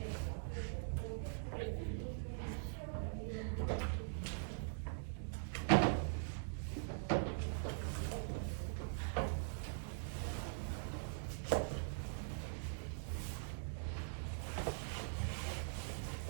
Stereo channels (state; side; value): silent; left; digital silence